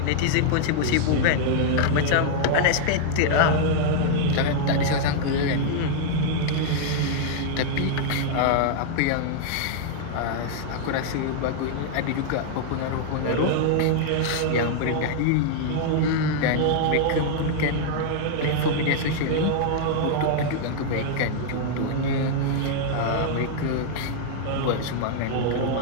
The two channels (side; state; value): both; different; correlation -0.01